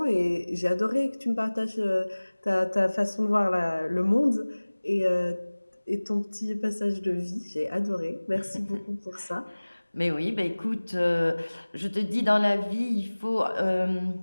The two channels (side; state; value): both; inverted; correlation -1.00